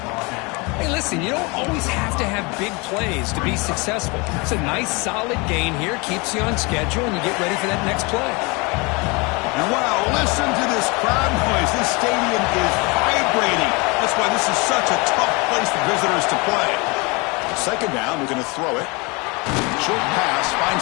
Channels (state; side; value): quieter; right; 27.9 dB